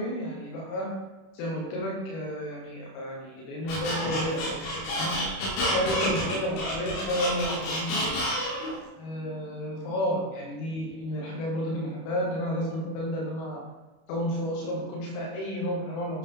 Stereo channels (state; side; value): late; right; 31 ms